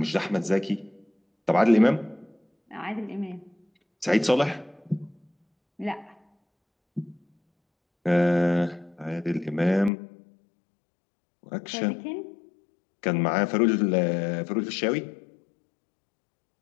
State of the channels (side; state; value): right; drops out; at 9.9 s